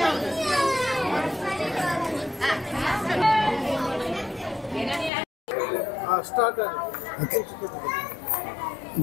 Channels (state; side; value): drops out; right; at 5.1 s